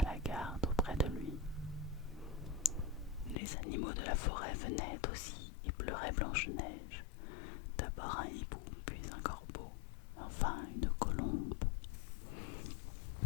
la garde auprès de lui. Les animaux de la forêt venaient aussi et pleuraient Blanche-Neige. D'abord un hibou, puis un corbeau, enfin une colombe.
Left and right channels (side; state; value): right; drops out; at 3.4 s